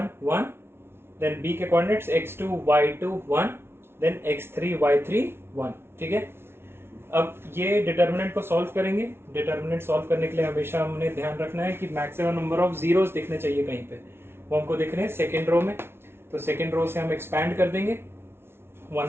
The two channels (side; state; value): left; late; 0.12 ms